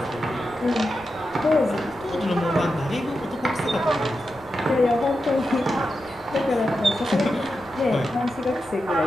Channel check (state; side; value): noise; right; rumble, 24 dB below the sound